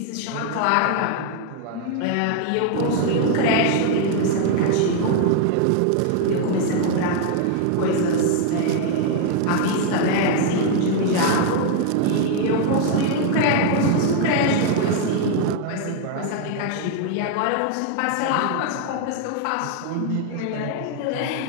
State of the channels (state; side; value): different; both; correlation 0.00